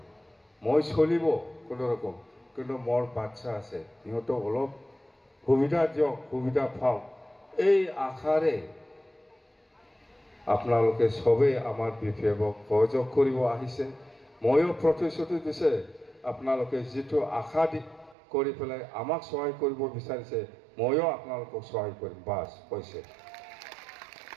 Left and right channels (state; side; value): drops out; left; at 18.2 s